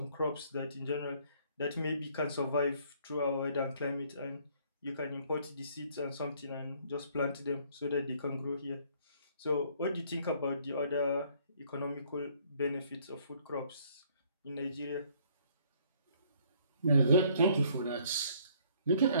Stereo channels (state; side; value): inverted; both; correlation -0.62